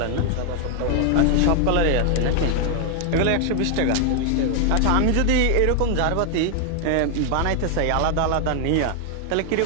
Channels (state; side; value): different; both; correlation 0.00